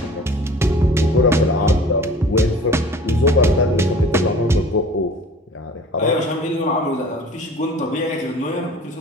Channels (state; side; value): normal; both; correlation 0.46